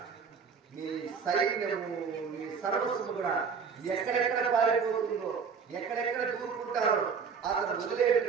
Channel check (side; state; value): left; quieter; 5.9 dB